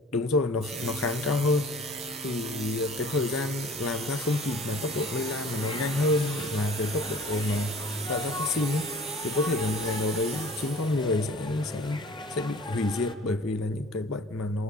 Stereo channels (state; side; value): normal; both; correlation 0.47